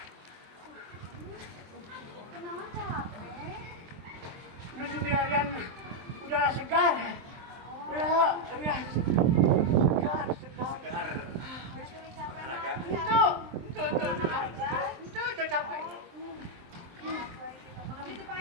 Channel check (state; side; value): late; left; 23 ms